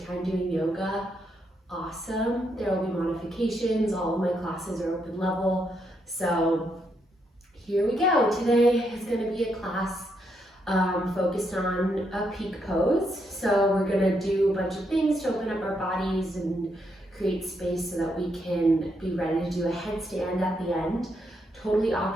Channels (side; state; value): both; normal; correlation 0.78